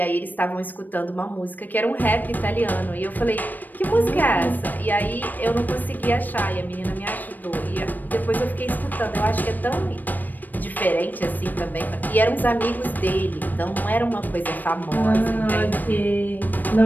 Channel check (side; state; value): right; late; 0.088 ms